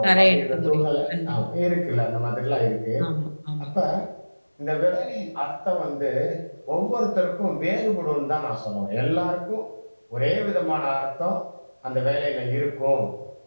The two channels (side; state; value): both; inverted; correlation -1.00